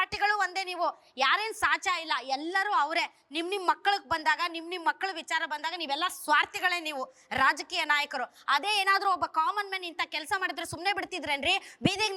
ಒಂದೇ. ನೀವು ಯಾರೇನು ಸಾಚ ಇಲ್ಲ, ಎಲ್ಲರೂ ಅವರೇ. ನಿಮ್ ಮಕ್ಕಳಿಗೆ ಬಂದಾಗ, ನಿಮ್ ಮಕ್ಕಳ ವಿಚಾರ ಬಂದಾಗ ನೀವೆಲ್ಲ ಸ್ವಾರ್ಥಿಗಳೇ. ನೀವು ರಾಜಕೀಯ ನಾಯಕರು. ಅದೇ ಏನಾದ್ರೂ ಒಬ್ಬ ಕಾಮನ್ ಮ್ಯಾನ್ ಇಂಥ ಕೆಲಸ ಮಾಡಿದ್ರೆ ಸುಮ್ಮನೆ ಬಿಡ್ತಿದ್ರೇನ್ರಿ? ಬೀದಿಗೆ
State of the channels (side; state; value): both; identical; correlation 1.00